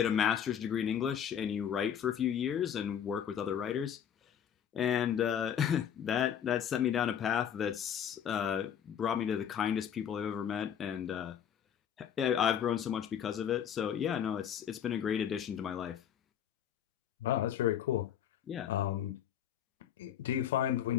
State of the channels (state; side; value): quieter; right; 9.0 dB